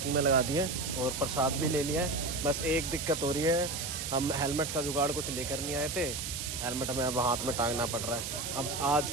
में लगा दी है, और प्रसाद भी ले लिया है। बस एक दिक्कत हो रही है, हम हेलमेट का जुगाड़ कुछ लेकर नहीं आए थे, हेलमेट हमें अब हाथ में टांगना पड़ रहा है। अब आज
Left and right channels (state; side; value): noise; right; hiss, 4 dB below the sound